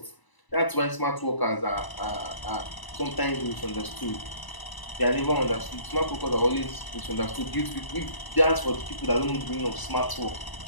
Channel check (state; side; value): late; right; 1.0 ms